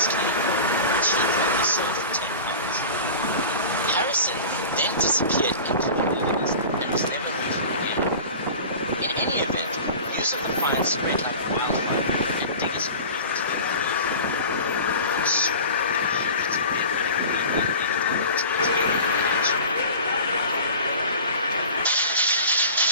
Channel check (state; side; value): inverted; both; correlation -0.37